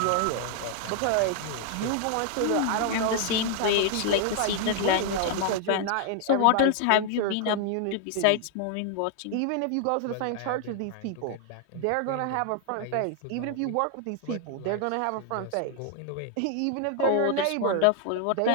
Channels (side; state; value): both; different; correlation 0.00